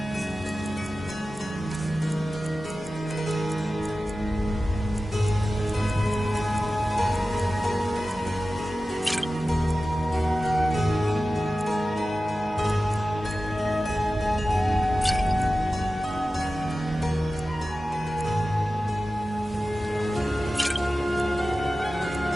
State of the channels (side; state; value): both; normal; correlation 0.95